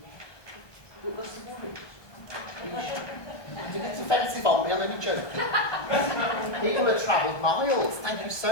But what's the worry? Don't get offensive on me, I'm only joking. People have travelled miles. Thank you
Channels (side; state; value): right; late; 1.2 ms